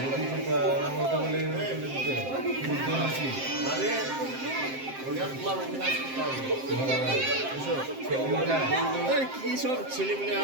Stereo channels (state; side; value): late; left; 7.6 ms